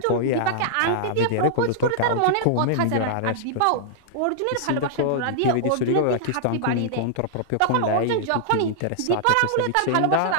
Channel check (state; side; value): different; both; correlation -0.01